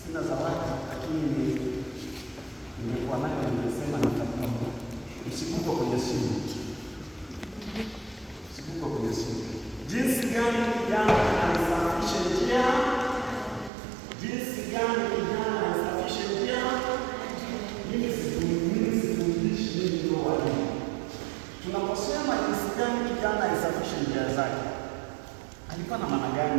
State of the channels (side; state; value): left; drops out; at 13.7 s